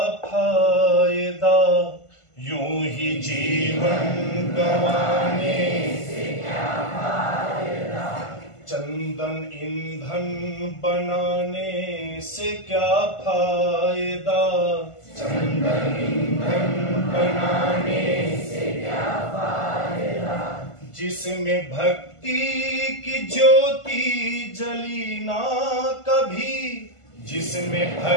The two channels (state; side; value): late; right; 1.5 ms